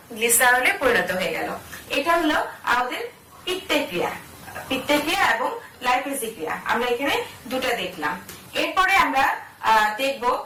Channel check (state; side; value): identical; both; correlation 1.00